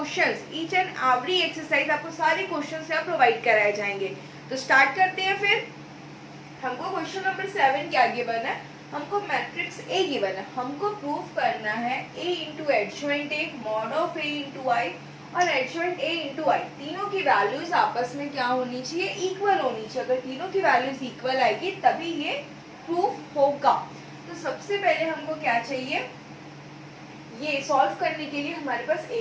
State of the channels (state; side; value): identical; both; correlation 1.00